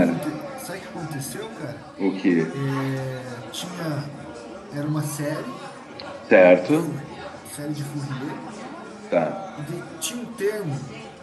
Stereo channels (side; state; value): both; identical; correlation 1.00